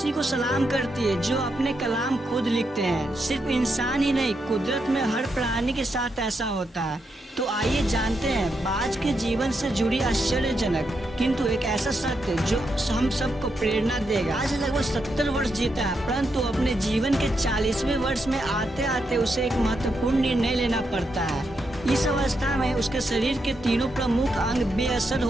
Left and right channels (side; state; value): both; normal; correlation 0.82